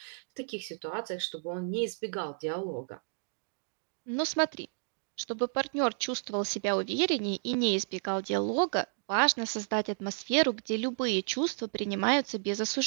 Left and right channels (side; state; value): left; silent; digital silence